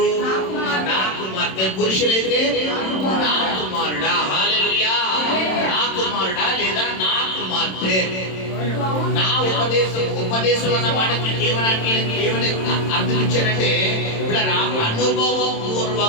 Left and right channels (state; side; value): late; right; 27 ms